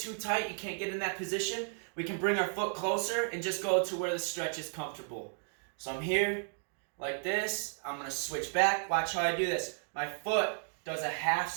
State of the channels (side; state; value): left; silent; 55 dB below the other